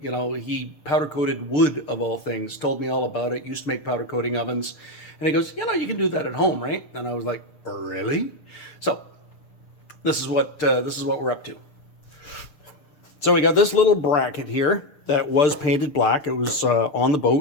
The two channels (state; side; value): late; right; 6.7 ms